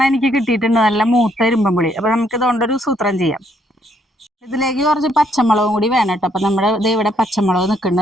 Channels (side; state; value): both; normal; correlation 0.70